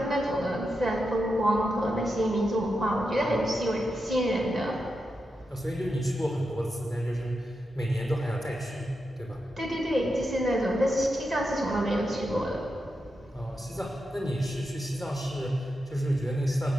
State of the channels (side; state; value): both; normal; correlation 0.87